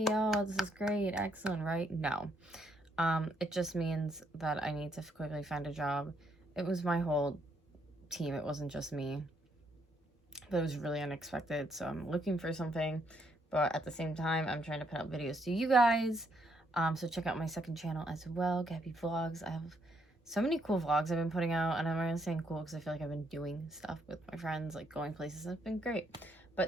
Oh, this is great. Excellent, right? No. It just means that I need to quickly find a job. It was my whole team. It wasn't just me. But it was really unexpected. So I'm looking for something. But at the same time, I'm trying to put out videos to you guys. So check out my second channel as well, Gabby Vlogs. I have so many cool vlogs I've been putting out. And I'm not saying cool because I feel like I've been doing stuff with my friends, like going places. It's been great.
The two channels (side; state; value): both; normal; correlation 0.73